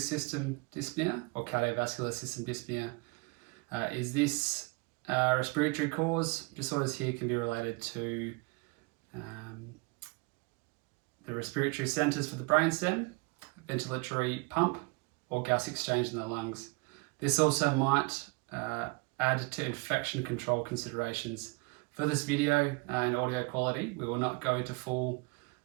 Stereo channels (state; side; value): quieter; left; 29.2 dB